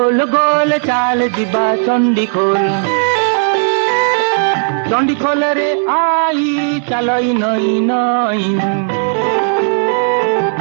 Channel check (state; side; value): silent; left; digital silence